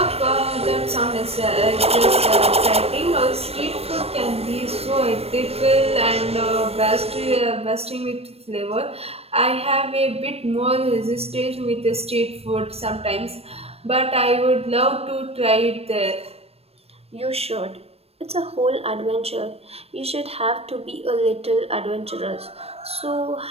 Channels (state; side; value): late; left; 0.29 ms